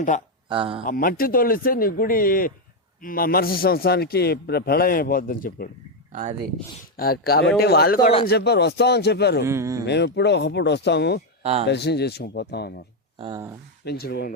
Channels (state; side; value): normal; both; correlation 0.03